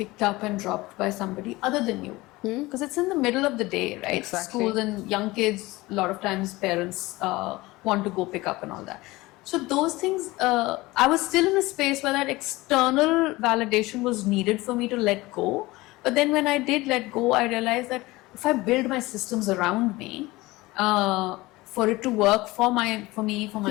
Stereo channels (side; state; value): right; quieter; 20.4 dB